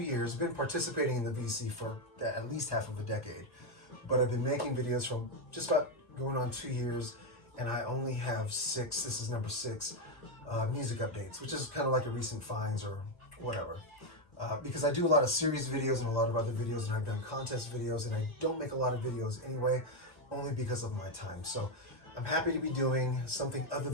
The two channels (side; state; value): right; late; 1.3 ms